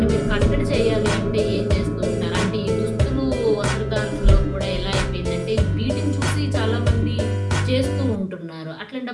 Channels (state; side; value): identical; both; correlation 1.00